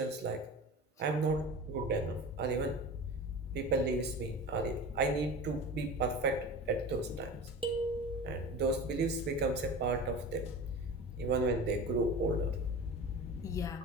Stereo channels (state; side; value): normal; both; correlation 0.33